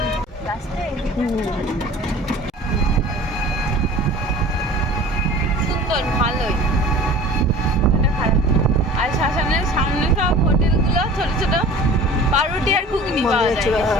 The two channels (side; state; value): both; normal; correlation 0.42